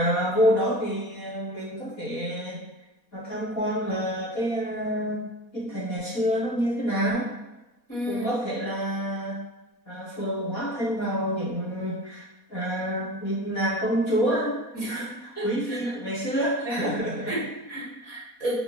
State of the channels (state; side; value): late; right; 4.2 ms